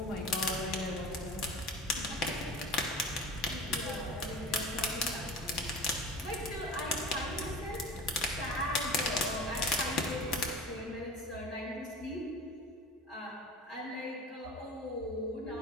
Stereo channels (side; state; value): both; normal; correlation 0.35